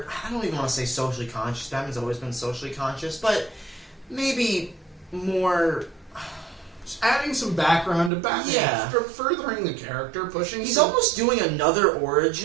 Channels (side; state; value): left; drops out; at 8.1 s